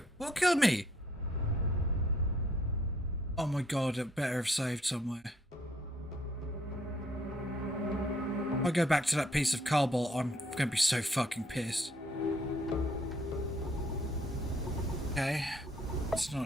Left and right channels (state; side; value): normal; both; correlation 0.66